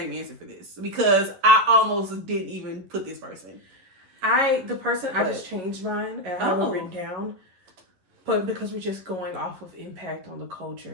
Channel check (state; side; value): late; left; 11 ms